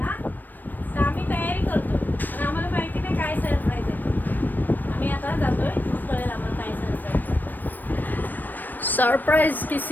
तर आम्ही तयारी करतो पण आम्हाला माहिती नाही काय सरप्राईज आहे. आम्ही आता जातोय, कळेल आम्हाला काय सरप्राईज. सरप्राइज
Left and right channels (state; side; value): late; right; 0.090 ms